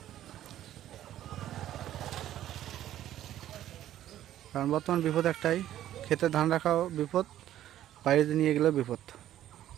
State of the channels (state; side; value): quieter; left; 12.4 dB